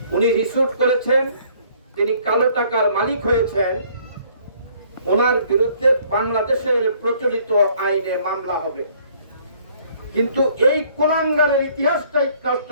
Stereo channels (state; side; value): inverted; both; correlation -0.60